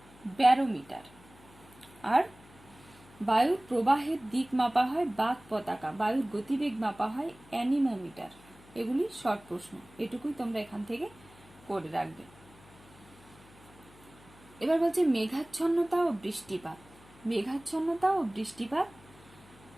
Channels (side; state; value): left; noise; hum, 24 dB below the sound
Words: ব্যারোমিটার। আর বায়ুর প্রবাহের দিক মাপা হয় বাক পতাকা। বায়ুর গতিবেগ মাপা হয় অ্যানিমোমিটার। এগুলি শর্ট প্রশ্ন, এটুকুই তোমরা এখান থেকে করে রাখবে। এবার বলছে মেঘাচ্ছন্নতা ও বৃষ্টিপাত। মেঘাচ্ছন্নতা ও বৃষ্টিপাত